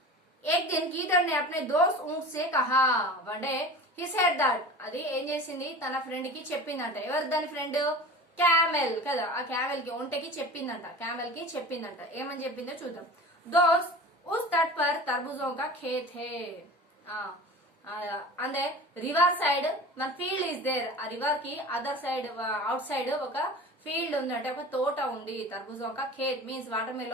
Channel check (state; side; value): normal; both; correlation 0.37